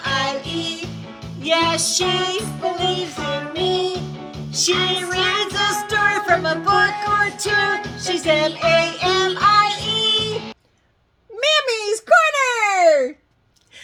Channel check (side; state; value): both; identical; correlation 1.00